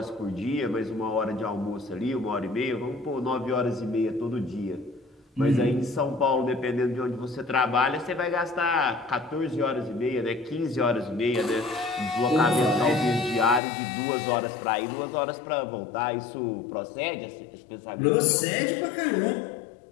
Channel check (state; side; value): drops out; right; at 13.6 s